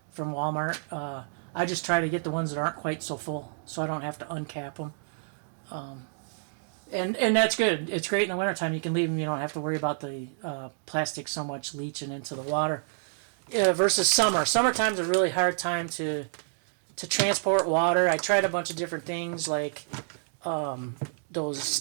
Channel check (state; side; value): silent; left; digital silence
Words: from Walmart. I just try to get the ones that aren't quite so full, so I don't have to uncap them. And that's good. It's great in the wintertime. You can leave them. You don't have to worry about the plastic so much leaching into the water. Versus summer. Summertime's a really hard time to transport water. I tried a bunch of different things, like those